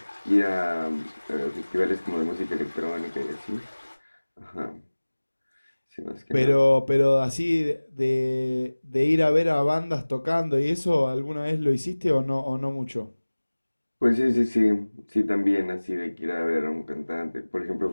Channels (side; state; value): both; inverted; correlation -1.00